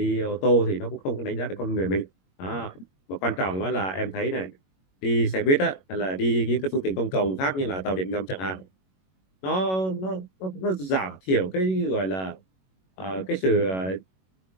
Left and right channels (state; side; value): late; right; 21 ms